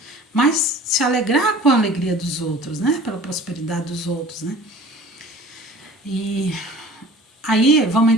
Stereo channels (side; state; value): both; normal; correlation 0.45